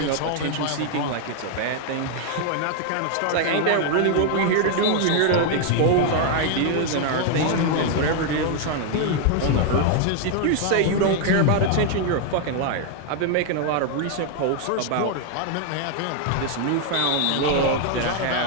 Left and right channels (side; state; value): both; different; correlation 0.00